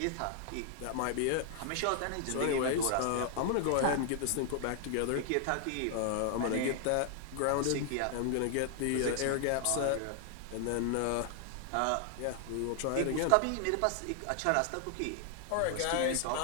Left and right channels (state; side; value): different; both; correlation 0.00